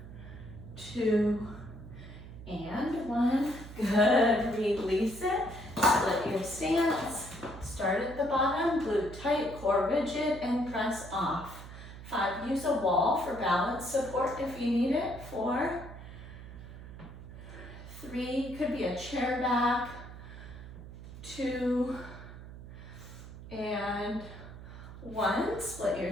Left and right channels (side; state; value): right; noise; hum, 14 dB below the sound